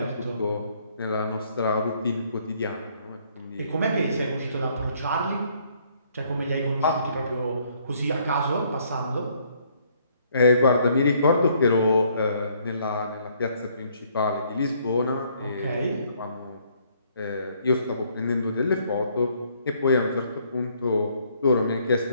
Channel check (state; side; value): inverted; both; correlation -0.66